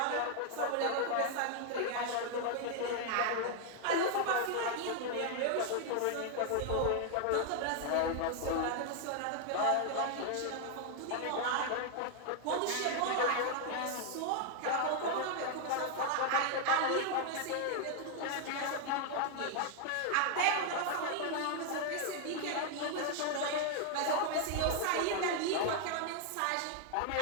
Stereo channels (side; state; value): both; different; correlation 0.00